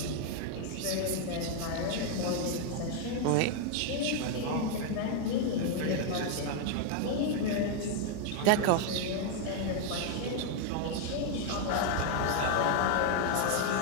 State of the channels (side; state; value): both; different; correlation 0.00